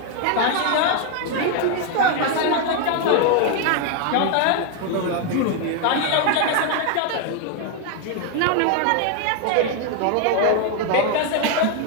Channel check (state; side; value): different; both; correlation 0.01